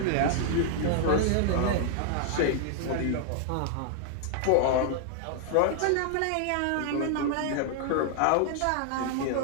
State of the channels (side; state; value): both; different; correlation 0.00